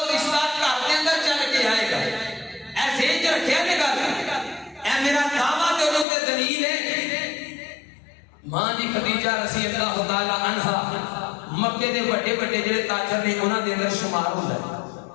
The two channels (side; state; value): right; drops out; at 6.1 s